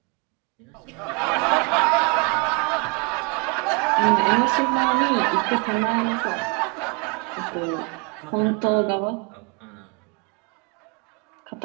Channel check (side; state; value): left; quieter; 32.0 dB